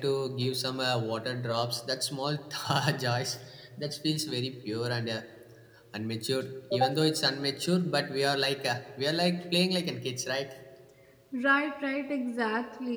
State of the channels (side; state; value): both; identical; correlation 1.00